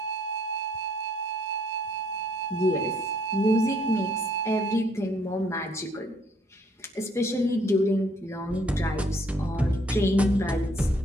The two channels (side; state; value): both; normal; correlation 0.65